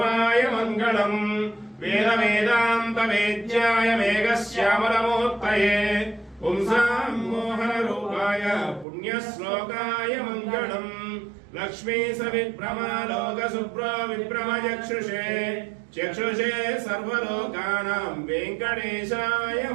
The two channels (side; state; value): left; drops out; at 8.8 s